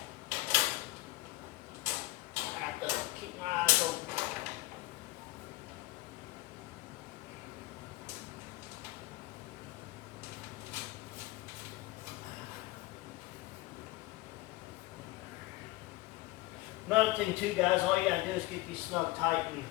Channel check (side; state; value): right; quieter; 18.7 dB